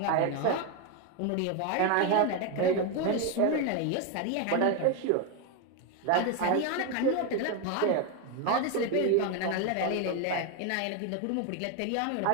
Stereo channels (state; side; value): different; both; correlation 0.02